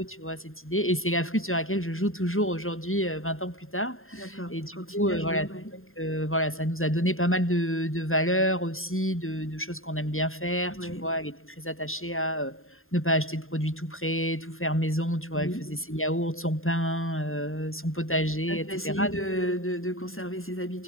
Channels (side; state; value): right; late; 0.61 ms